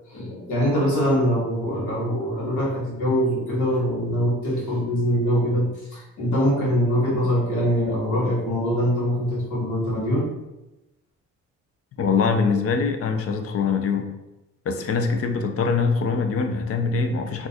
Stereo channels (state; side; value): normal; both; correlation 0.46